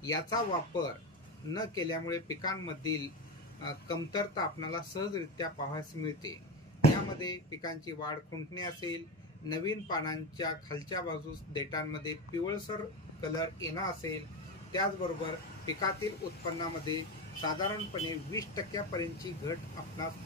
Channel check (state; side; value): normal; both; correlation 0.19